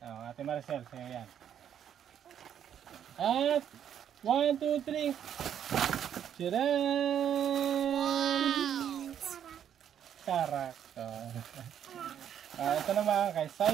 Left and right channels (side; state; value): left; quieter; 9.4 dB